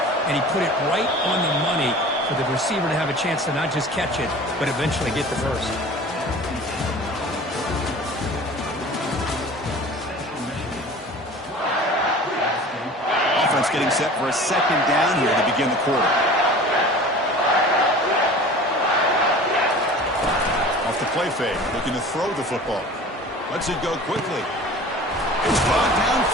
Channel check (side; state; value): both; normal; correlation 0.41